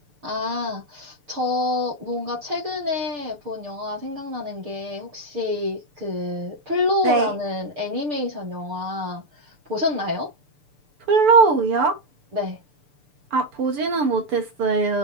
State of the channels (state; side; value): late; left; 6.8 ms